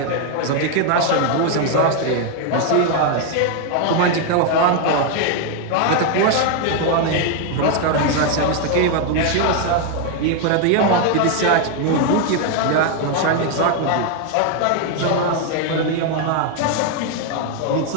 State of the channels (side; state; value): both; different; correlation 0.01